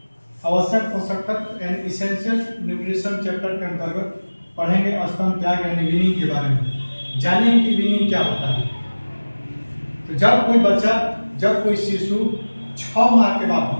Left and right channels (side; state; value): both; inverted; correlation -1.00